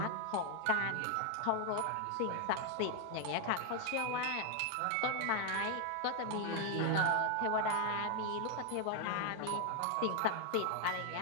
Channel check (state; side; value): different; both; correlation 0.01